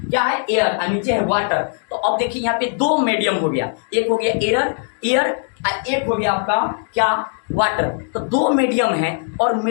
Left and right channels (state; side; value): silent; right; 56 dB below the other